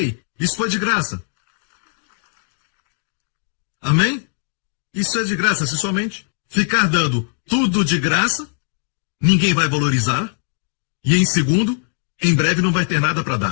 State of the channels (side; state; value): right; silent; digital silence